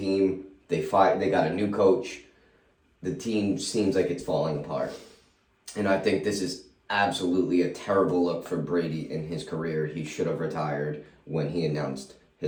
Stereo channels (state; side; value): identical; both; correlation 1.00